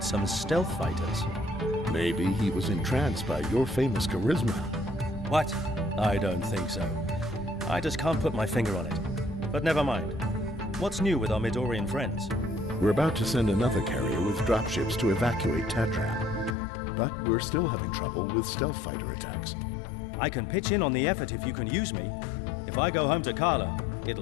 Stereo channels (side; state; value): right; drops out; at 16.6 s